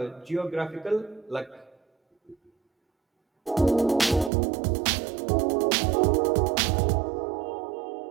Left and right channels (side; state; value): left; drops out; at 4.3 s